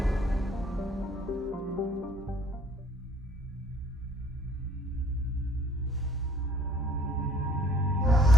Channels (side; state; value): both; normal; correlation 0.62